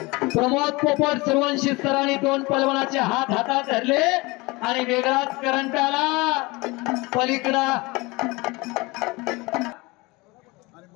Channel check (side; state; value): right; quieter; 24.0 dB